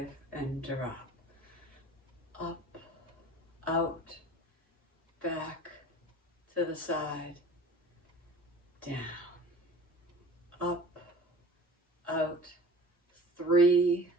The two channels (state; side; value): normal; both; correlation 0.44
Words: and drop. Up, out, back, to the side, down, up, out, 3,